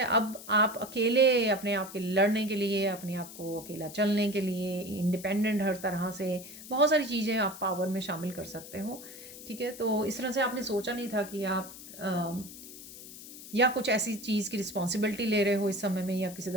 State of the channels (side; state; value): left; noise; hiss, 15 dB below the sound